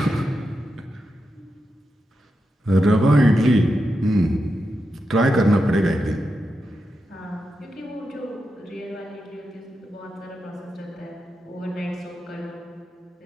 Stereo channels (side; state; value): both; normal; correlation 0.88